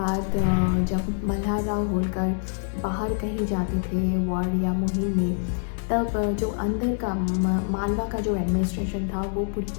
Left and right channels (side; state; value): right; silent; digital silence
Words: जब मल्हार राव होलकर बाहर कहीं जाते थे वॉर या मुहिम में, तब जो अंदर का मालवा का जो एडमिनिस्ट्रेशन था वो पूरी